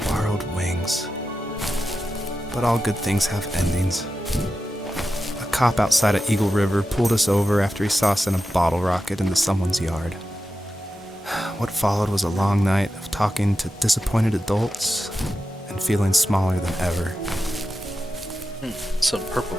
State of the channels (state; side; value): normal; both; correlation 0.91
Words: borrowed wings. But all good things have endings. A cop outside of Eagle River pulled us over after he saw us in a bottle rocket into someone's yard. What followed was a long night of talking to disappointed adults and feeling smaller than ever. Some purple